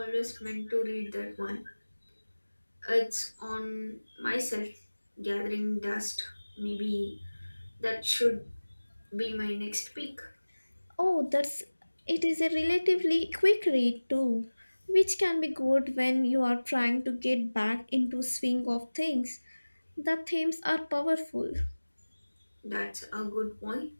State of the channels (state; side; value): inverted; both; correlation -1.00